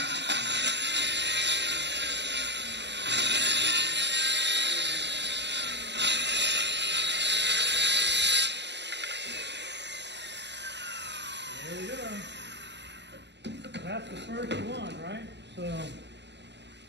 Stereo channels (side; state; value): left; late; 0.51 ms